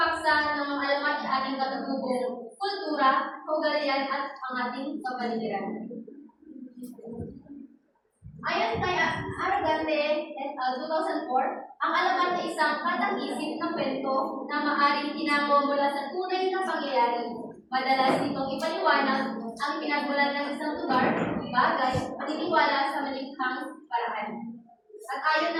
ng mga alamat ay ating katutubong kultura, kaugalian at ang ating kapaligiran. Ayon kay Aragante et al. 2004, ang alamat ay isang katang-isip ng kwento na maaaring tinango mula sa tunay na pangyayari. Madalas nitong ipaliwanag ang pinagmulan ng isang lugar, bagay, paniniwala sa malikhang paraan. At ayon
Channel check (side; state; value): both; identical; correlation 1.00